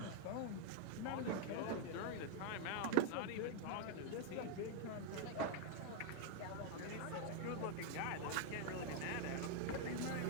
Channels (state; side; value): different; both; correlation 0.00